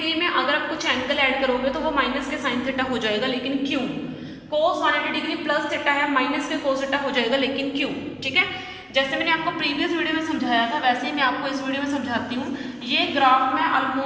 में अगर आप कुछ एंगल ऐड करोगे तो वो माइनस के साइन थीटा हो जाएगा, लेकिन क्यों। कोस 180 डिग्री प्लस थीटा है, माइनस के कोस थीटा हो जाएगा, लेकिन क्यों। ठीक है, जैसे मैंने आपको प्रीवियस वीडियो में समझाया था वैसे ही मैं आपको इस वीडियो में समझाती हूँ। ये ग्राफ मैं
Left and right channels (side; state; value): both; identical; correlation 1.00